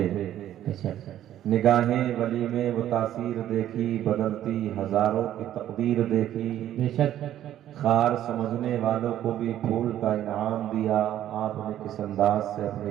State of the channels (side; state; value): left; quieter; 11.9 dB